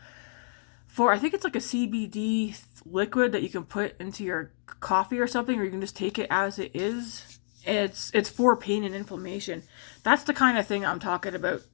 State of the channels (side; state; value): right; silent; digital silence